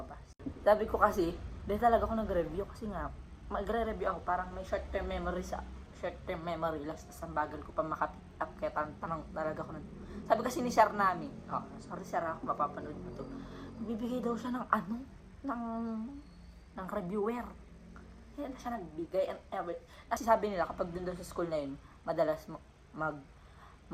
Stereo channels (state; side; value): identical; both; correlation 1.00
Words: Sabi ko kasi, dahil talaga ako nag-review kasi nga, magre-review ako, parang may short-term memory last na bagal ko pa makapick up, kaya tanong talaga ako nun. Sabi kasi ni Sir namin, sorry Sir, ako mapapanood mo to, magbibigay daw siya ng reviewer. Kaya na siya nagbigay and everything. Kasi sabi nila, kapag dun sa school na yun, madalas